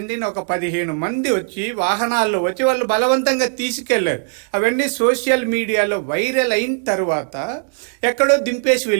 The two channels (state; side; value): silent; left; 57 dB below the other